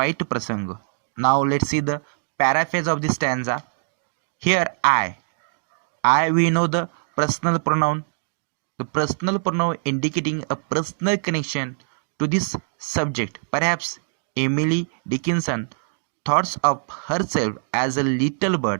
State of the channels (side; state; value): left; silent; digital silence